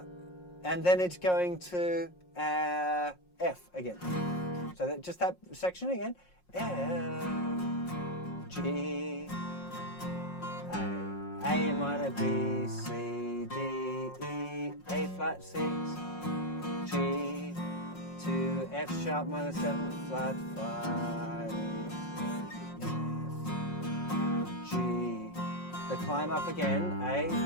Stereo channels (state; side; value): late; right; 5.6 ms